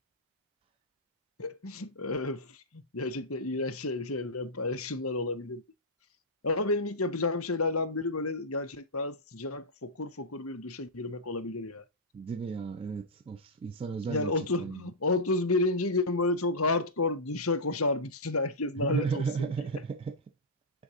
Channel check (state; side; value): normal; both; correlation -0.10